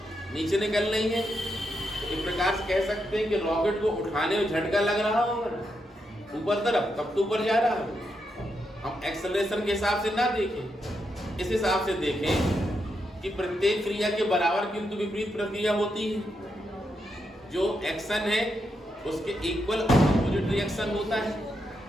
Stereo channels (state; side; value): normal; both; correlation 0.83